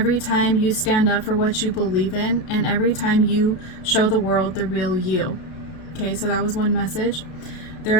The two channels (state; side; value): late; right; 32 ms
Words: time you stand up for what you believe in, and every time you show the world the real you. Okay, so that was one message. There